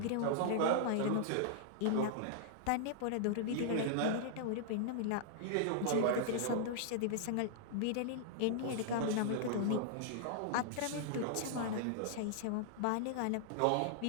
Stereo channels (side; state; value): both; different; correlation -0.01